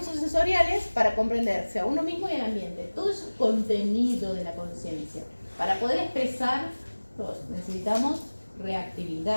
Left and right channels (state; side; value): inverted; both; correlation -1.00